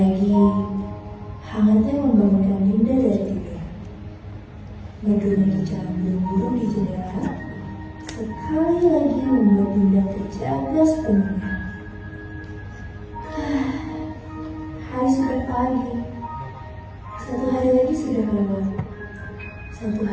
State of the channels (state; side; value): identical; both; correlation 1.00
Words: hangatnya membangunkan Dinda dari tidur. Berdiri jalan burung-burung di jendela, sekali lagi membuat Dinda terjaga sepenuhnya. Hari sudah pagi. Satu hari lagi sudah lewat. Satu